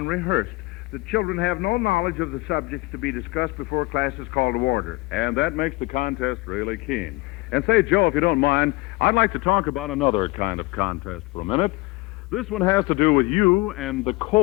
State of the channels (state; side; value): quieter; right; 23.0 dB